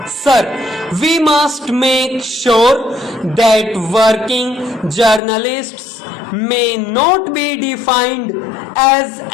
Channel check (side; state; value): right; drops out; at 5.2 s